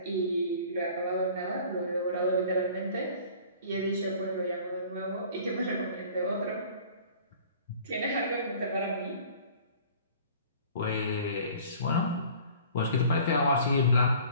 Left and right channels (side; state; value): both; inverted; correlation -0.49